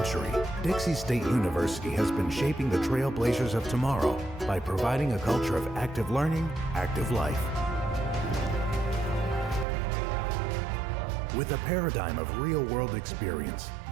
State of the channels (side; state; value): left; drops out; at 9.7 s